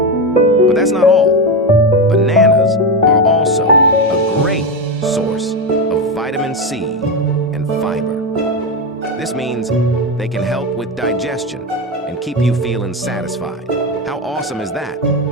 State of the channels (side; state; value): both; normal; correlation 0.14